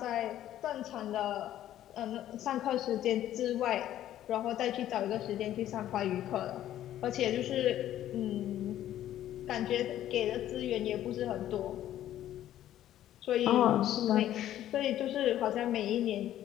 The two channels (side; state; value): right; quieter; 12.3 dB